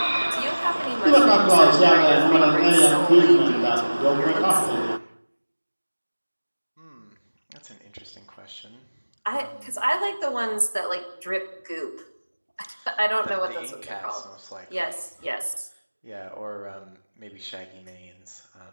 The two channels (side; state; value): both; inverted; correlation -1.00